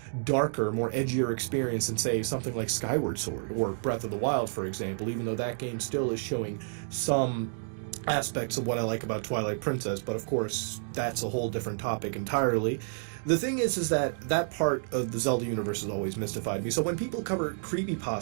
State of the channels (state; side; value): silent; left; digital silence